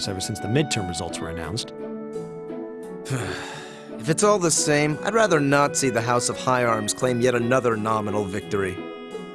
ever since the midterm results were announced. If it's all the same, I'd rather not see the House of High Arms claim yet another nominal victory.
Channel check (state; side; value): identical; both; correlation 1.00